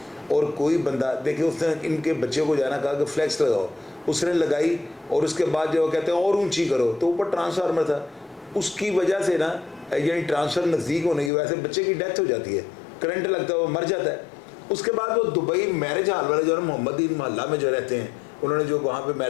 और कोई बंदा देखिए, उसने इनके बच्चे को जाना कहा कि फ्लैक्स लगाओ, उसने लगाई और उसके बाद जो कहते हैं और ऊंची करो, तो ऊपर ट्रांसफार्मर था, उसकी वजह से ना यानी ट्रांसफर नज़दीक होने की वजह से बच्चे की डेथ हो जाती है, करंट लगता है, वो मर जाता है। उसके बाद वो दुबई मैरिज हॉल वाले जो है मोहम्मदीन मोहल्ला में जो रहते हैं, उन्होंने जो वहाँ पे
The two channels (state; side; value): drops out; right; at 11.3 s